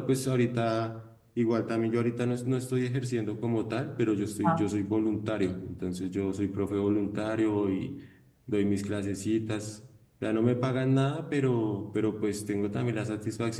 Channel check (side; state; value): both; identical; correlation 1.00